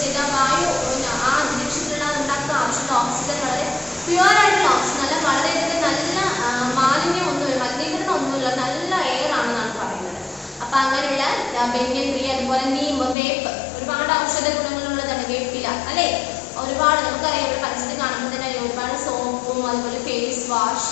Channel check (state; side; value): drops out; right; at 13.2 s